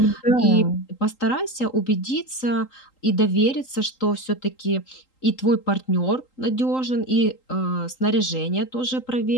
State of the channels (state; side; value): late; right; 3.8 ms